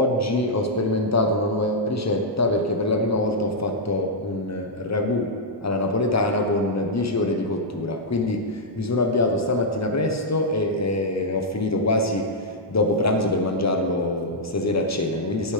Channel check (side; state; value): both; normal; correlation -0.07